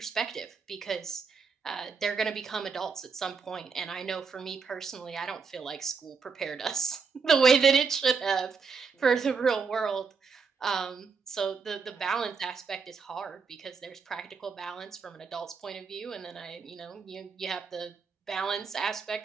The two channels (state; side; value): quieter; left; 5.3 dB